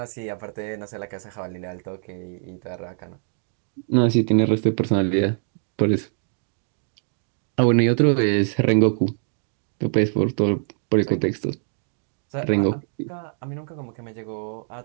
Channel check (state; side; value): silent; left; 61 dB below the other